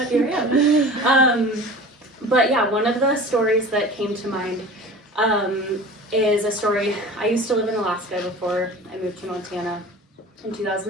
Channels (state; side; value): normal; both; correlation 0.38